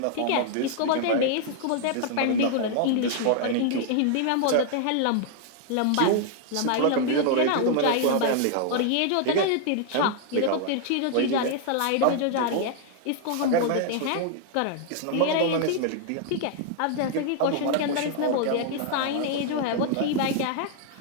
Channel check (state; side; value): different; both; correlation 0.00